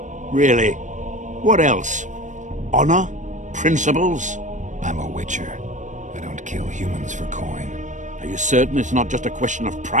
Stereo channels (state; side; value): late; left; 0.36 ms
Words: Really? What else? Honor? Principles? I'm a witcher. I don't kill humans for coin. Are you certain it's not just a question of